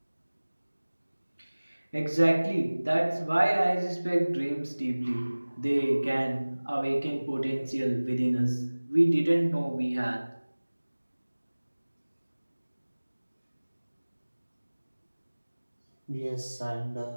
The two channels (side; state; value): both; inverted; correlation -1.00